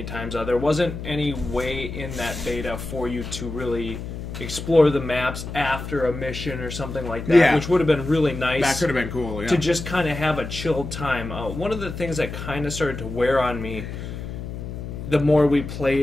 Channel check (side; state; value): left; noise; hum, 8 dB below the sound